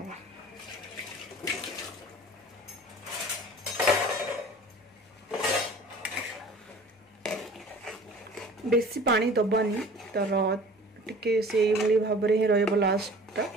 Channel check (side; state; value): both; normal; correlation 0.45